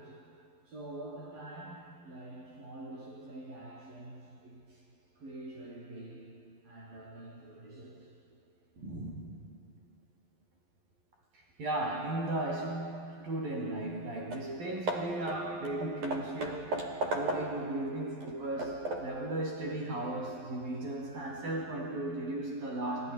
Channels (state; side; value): late; left; 11 ms